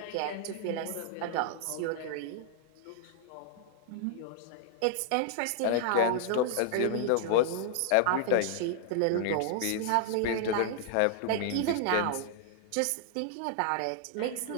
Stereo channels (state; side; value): different; both; correlation -0.01